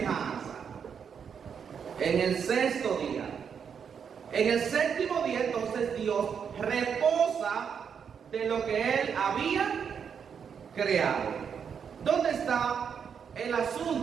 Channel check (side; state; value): left; quieter; 7.1 dB